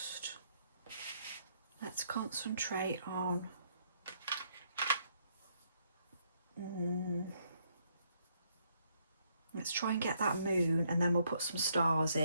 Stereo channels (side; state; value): both; inverted; correlation -0.72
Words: let's concentrate on let's try and get that moon, and then we'll put some stars